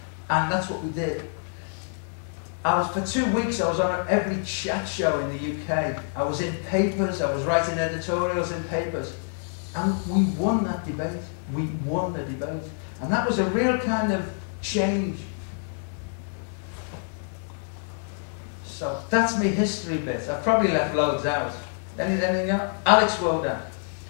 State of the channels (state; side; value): silent; right; 61 dB below the other